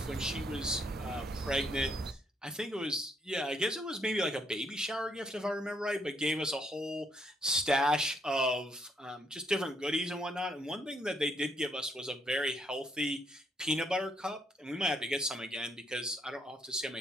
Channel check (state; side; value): normal; both; correlation 0.72